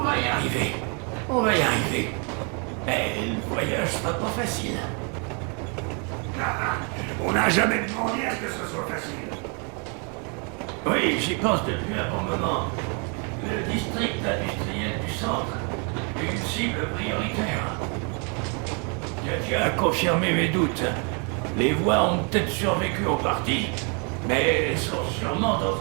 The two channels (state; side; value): quieter; left; 36.2 dB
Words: va y arriver. On va y arriver. Mais le voyage sera pas facile. On n'a jamais demandé à ce que ce soit facile. Oui, j'y pense depuis un bon moment. Le district industriel du centre est une cible prioritaire. Tu as confirmé mes doutes. Les voies ont peut-être survécu en partie, mais sont sûrement dans